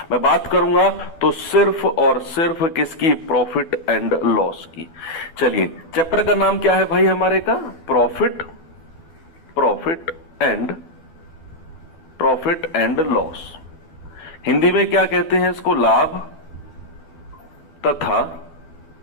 मैं बात करूंगा तो सिर्फ और सिर्फ किसकी? प्रॉफिट एंड लॉस की। चलिए, चैप्टर का नाम क्या है भाई हमारे का? Profit and loss. हिंदी में क्या कहते हैं इसको? लाभ तथा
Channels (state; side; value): late; right; 12 ms